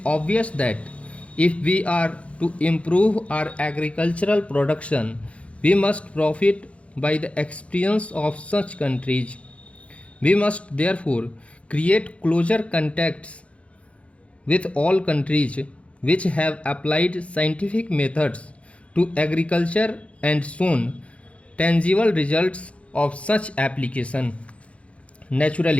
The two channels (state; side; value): late; right; 0.062 ms